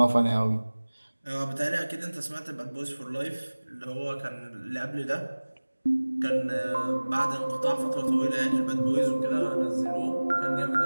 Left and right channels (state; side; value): inverted; both; correlation -1.00